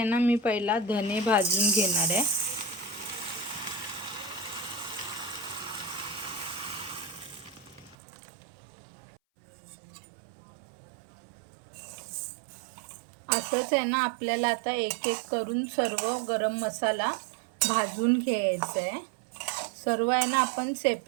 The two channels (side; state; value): left; drops out; at 8.0 s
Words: ना मी पहिला धने भाजून घेणार आहे. असंच आहे ना आपल्याला आता एक एक करून सर्व गरम मसाला भाजून घ्यायचा आहे. सर्व आहे ना आपण